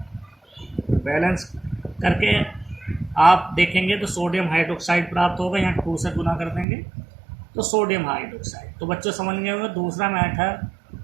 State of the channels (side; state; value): left; drops out; at 6.7 s